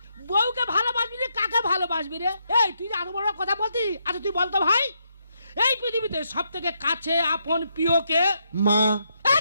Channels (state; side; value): inverted; both; correlation -0.79